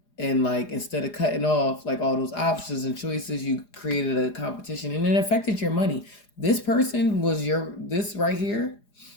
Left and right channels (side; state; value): right; late; 4.9 ms